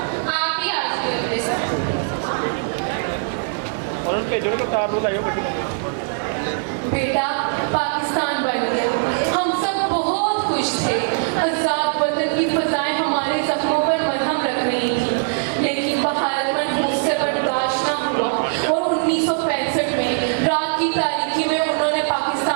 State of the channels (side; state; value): left; silent; digital silence